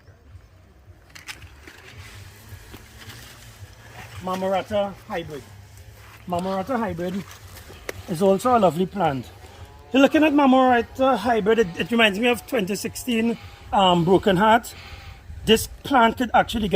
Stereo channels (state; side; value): identical; both; correlation 1.00